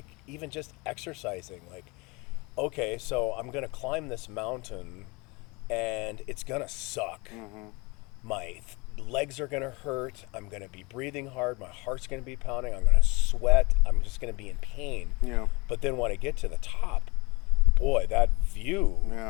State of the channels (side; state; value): right; quieter; 26.3 dB